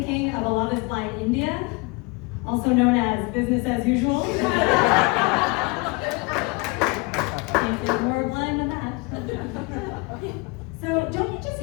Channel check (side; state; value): right; quieter; 27.6 dB